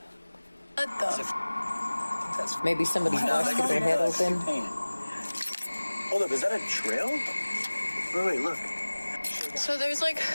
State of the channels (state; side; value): inverted; both; correlation -1.00